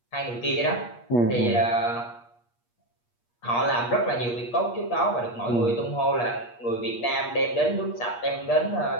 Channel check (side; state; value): right; late; 8.4 ms